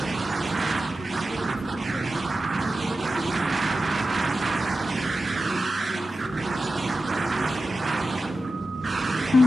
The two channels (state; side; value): normal; both; correlation 0.92